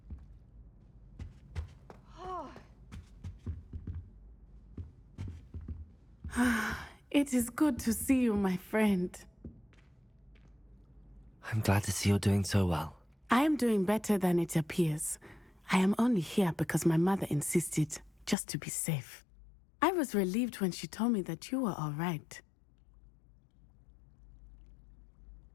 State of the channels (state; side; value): drops out; right; at 18.4 s